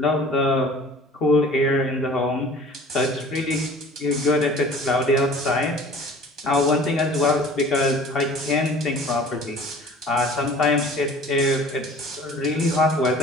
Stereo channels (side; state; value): both; normal; correlation 0.46